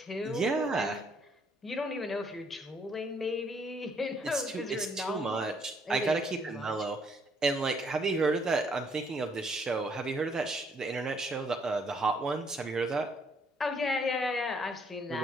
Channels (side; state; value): both; normal; correlation 0.68